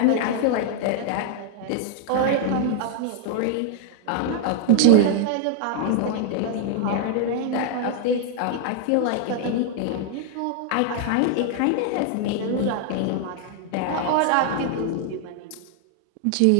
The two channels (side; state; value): both; different; correlation 0.00